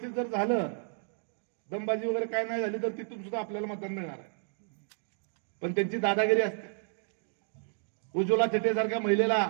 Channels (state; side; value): silent; left; 57 dB below the other